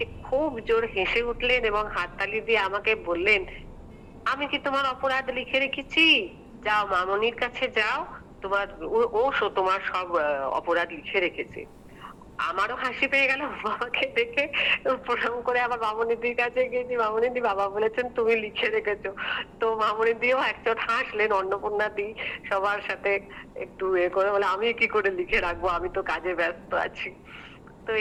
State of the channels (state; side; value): identical; both; correlation 1.00